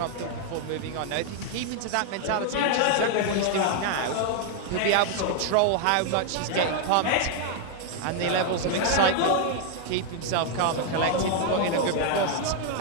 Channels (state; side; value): different; both; correlation 0.00